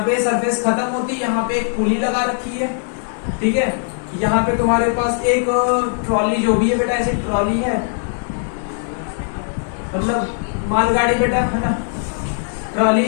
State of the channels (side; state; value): right; silent; digital silence